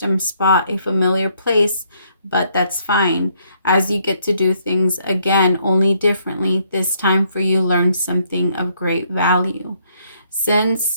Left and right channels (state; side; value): inverted; both; correlation -0.69